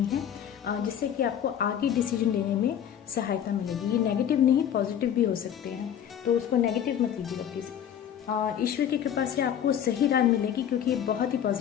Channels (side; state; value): right; quieter; 9.4 dB